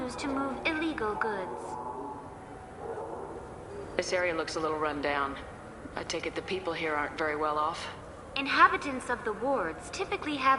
to move illegal goods. This area looks a little run down. I take it the people here aren't very well off? Inhabitants of the wards typically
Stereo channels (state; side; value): identical; both; correlation 1.00